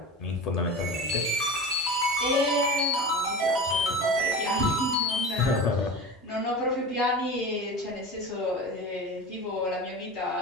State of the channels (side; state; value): both; normal; correlation 0.31